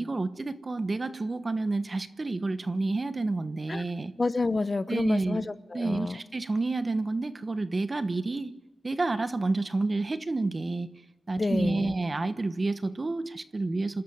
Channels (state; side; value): normal; both; correlation 0.96